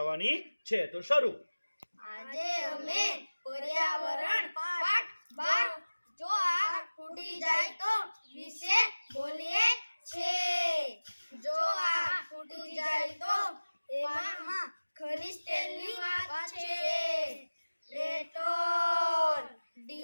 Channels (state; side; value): inverted; both; correlation -1.00